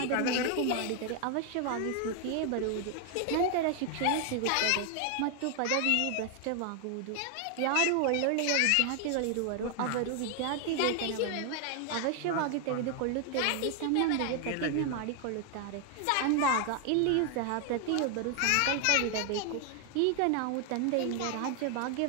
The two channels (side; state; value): both; different; correlation 0.00